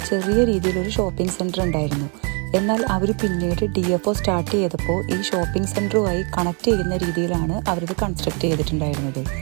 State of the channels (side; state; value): left; quieter; 35.8 dB